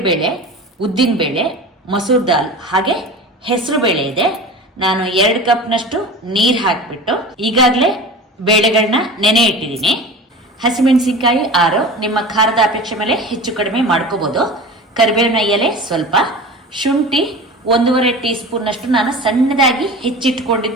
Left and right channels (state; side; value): normal; both; correlation 0.34